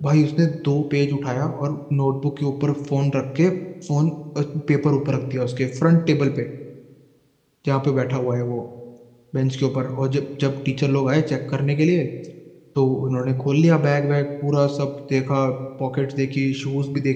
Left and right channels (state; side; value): identical; both; correlation 1.00